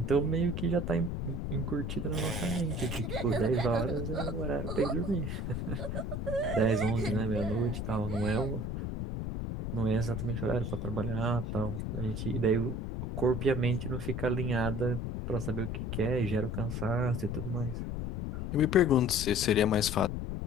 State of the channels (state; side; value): noise; left; rumble, 3 dB below the sound